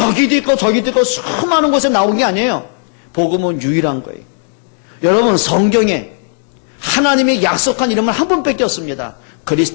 있고 저기도 있고 수많은 곳에 나온 게 아니에요. 복음은 유일한 거예요. 여러분, 성경에 하나님이 약속한 이름은 한 분밖에 없습니다.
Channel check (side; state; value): right; silent; 61 dB below the other